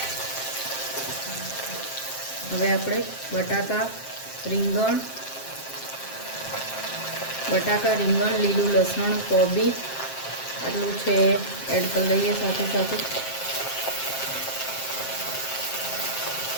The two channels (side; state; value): right; late; 7.6 ms